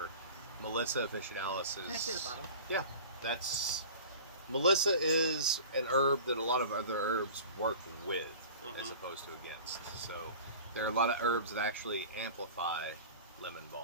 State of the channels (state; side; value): inverted; both; correlation -0.40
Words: Melissa officinalis is. Can I see the bottle? Yeah, that's. Melissa is an herb that a lot of other herbs work with as Mhm. opposed to against. So there are a lot of herbs that actually amplify lemon